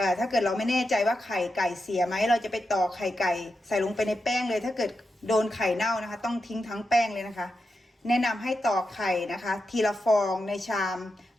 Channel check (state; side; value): normal; both; correlation 0.88